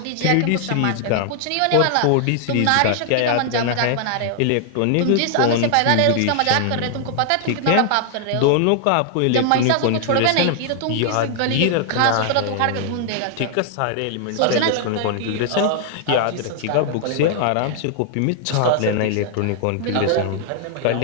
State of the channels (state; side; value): different; both; correlation 0.00